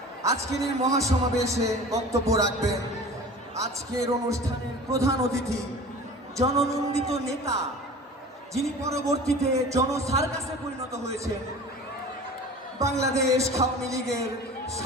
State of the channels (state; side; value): normal; both; correlation 0.39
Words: আজকের এই মহাসমাবেশে বক্তব্য রাখবেন আজকের অনুষ্ঠানের প্রধান অতিথি, জননন্দিত নেতা, যিনি পরবর্তীতে জনসার্কাসে পরিণত হয়েছেন, বাংলাদেশ আওয়ামী লীগের